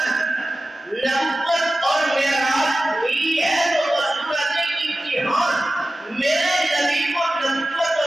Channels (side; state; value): both; normal; correlation 0.95